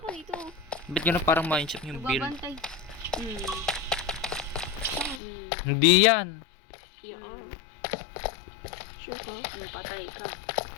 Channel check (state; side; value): drops out; right; at 5.2 s